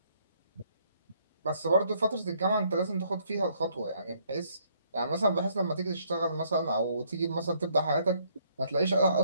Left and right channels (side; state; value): both; inverted; correlation -0.67